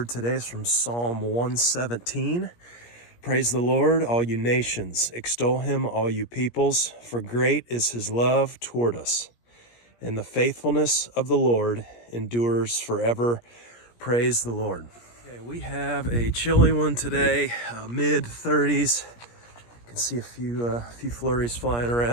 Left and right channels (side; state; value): right; late; 17 ms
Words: today is from Psalm 117. Praise the Lord, all you nations. Extol him, all you peoples, for great is his love toward us. And the faithfulness of the Lord endures forever. Praise the Lord. Okay, we have a chilly one today, mid 30s. You can see a few flurries flying